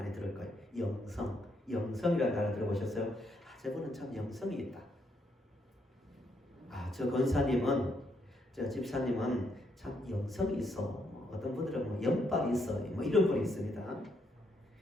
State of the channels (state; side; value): normal; both; correlation 0.75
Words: 들을 거예요. 영성이라는 단어 들어보셨어요? 저분은 참 영성이 있다. 저 권사님은, 저 집사님은 참 영성이 있어. 어떤 분들은 뭐 영빨이 있어. 뭐 이런 분이 있습니다.